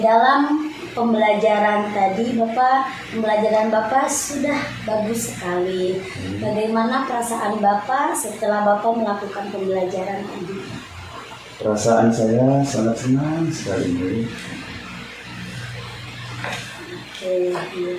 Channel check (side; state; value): both; identical; correlation 1.00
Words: dalam pembelajaran tadi, pembelajaran Bapak sudah bagus sekali. Bagaimana perasaan Bapak setelah Bapak melakukan pembelajaran tadi? Perasaan saya sangat senang sekali. Oke, iya,